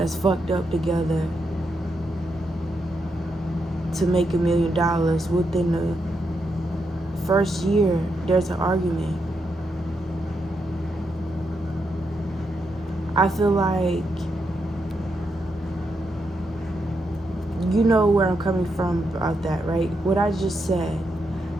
fucked up together to make $1 million within the first year. There's an argument. I feel like, you know where I'm coming from about that, right? What I just said.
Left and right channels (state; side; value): normal; both; correlation 0.82